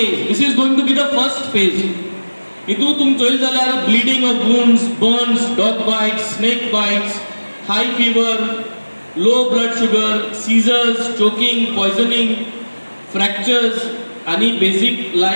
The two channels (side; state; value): both; inverted; correlation -1.00